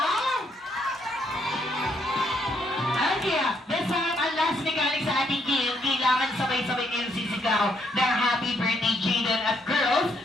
Okay, this time, ang last mechanic sa ating game, kailangan sabay-sabay kayong sisigaw ng Happy Birthday Jaden at girls,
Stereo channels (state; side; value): normal; both; correlation 0.73